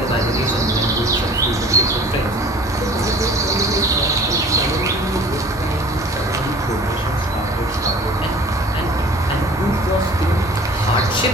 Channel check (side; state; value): both; normal; correlation 0.46